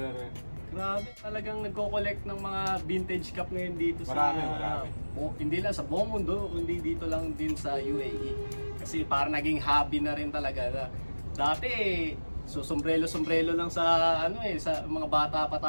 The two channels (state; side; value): inverted; both; correlation -1.00